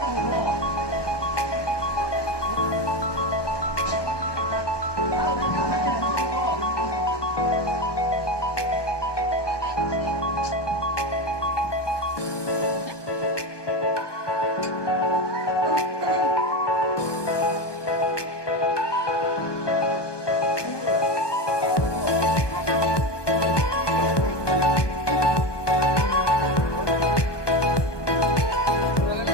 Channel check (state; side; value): late; right; 1.2 ms